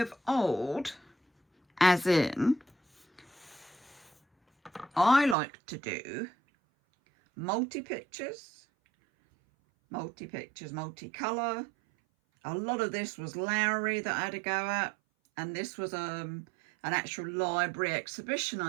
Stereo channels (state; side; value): drops out; left; at 5.4 s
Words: old, as in I like to do multi-pictures, multicolour. A lot of this was Lowry that I had to go at, and this was an actual library exhibition